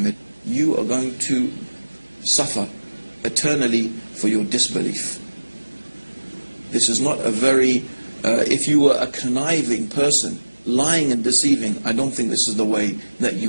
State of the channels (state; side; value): inverted; both; correlation -1.00